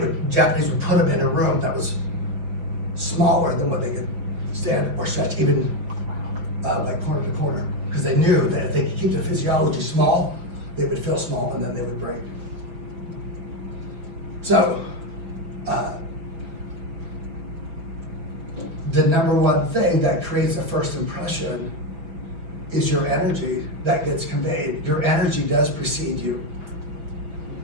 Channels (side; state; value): left; late; 5.5 ms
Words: Japanese would put them in a room that was smaller than what they could stand or stretch, even like corner to corner, because they knew that if they could keep their physiology small, they would feel small and then they would break. So, the number one thing that creates a first impression is your energy that gets conveyed. Your energy does precede you.